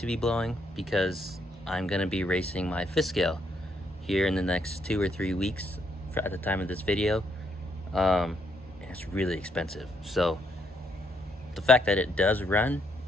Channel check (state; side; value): normal; both; correlation 0.73